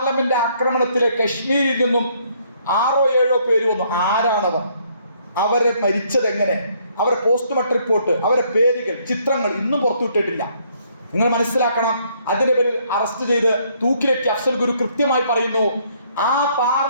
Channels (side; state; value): both; inverted; correlation -0.67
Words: ആക്രമണത്തിലെ കശ്മീരിൽ നിന്നും 6-7 പേര് വന്നു. ആരാണവർ? അവരെ മരിച്ചത് എങ്ങനെ? അവരെ പോസ്റ്റ്മോർട്ടം റിപ്പോർട്ട്, അവരെ പേരുകൾ, ചിത്രങ്ങൾ ഇന്നും പുറത്തുവിട്ടിട്ടില്ല. നിങ്ങൾ മനസ്സിലാക്കണം. അതിന്റെ പേരിൽ അറസ്റ്റ് ചെയ്ത് തൂക്കിലേറ്റി അഫ്സൽ ഗുരു കൃത്യമായി പറയുന്നു, ആ